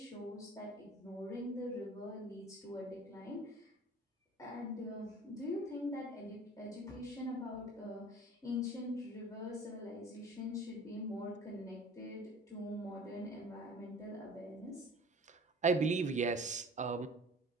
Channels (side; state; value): both; normal; correlation 0.45